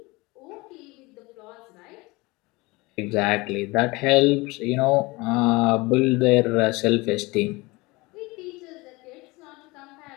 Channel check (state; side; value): quieter; right; 23.4 dB